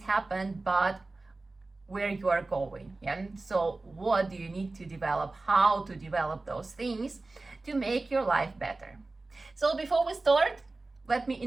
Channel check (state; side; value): quieter; left; 3.3 dB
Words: but where you are going. Yeah, so what do you need to develop, how to develop those things to make your life better. So before we start, let me